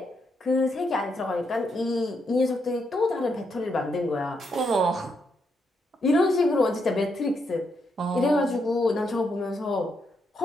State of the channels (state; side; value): normal; both; correlation 0.80